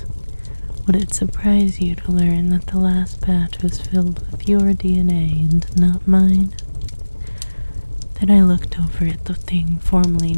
Would it surprise you to learn that the last batch was filled with your DNA and not mine? Then I looked over at the thing formerly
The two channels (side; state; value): both; inverted; correlation -1.00